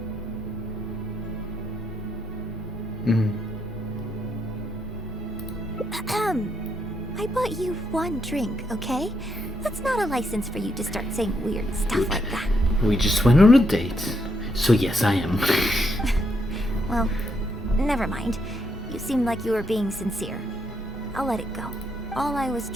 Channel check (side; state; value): both; normal; correlation 0.77